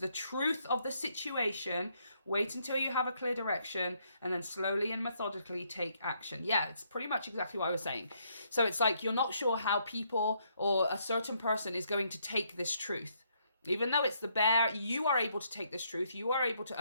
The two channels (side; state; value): both; inverted; correlation -0.73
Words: truth of the situation. Wait until you have a clear direction, and then slowly and methodically take action. Yeah, it's pretty much exactly what I was saying. So it's like you're not sure how people or a certain person is going to take this truth. Even though it's the bear, you are able to take this truth. You are able to